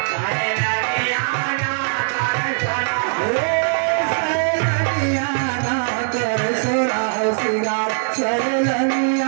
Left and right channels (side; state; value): left; silent; digital silence